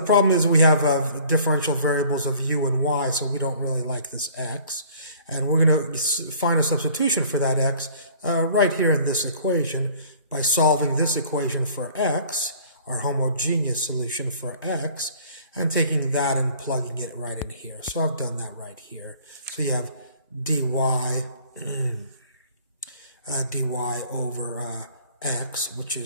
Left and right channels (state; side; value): inverted; both; correlation -0.52